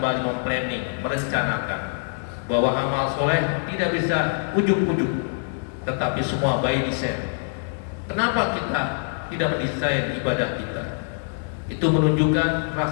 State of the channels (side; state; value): right; silent; digital silence